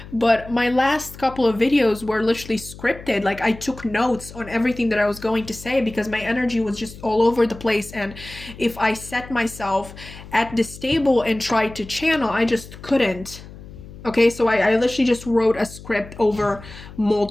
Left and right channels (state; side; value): noise; left; hum, 16 dB below the sound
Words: But my last couple of videos were literally scripted. Like, I took notes on everything that I was going to say because my energy was just all over the place. And if I set myself at this table and tried to channel, I just couldn't. Okay, so I literally just wrote a script over